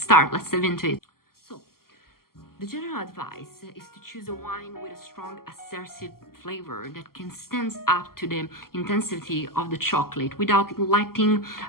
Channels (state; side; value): late; right; 0.93 ms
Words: dive into it. The general advice is to choose a wine with a strong assertive flavor that can stand up to the intensity of the chocolate without letting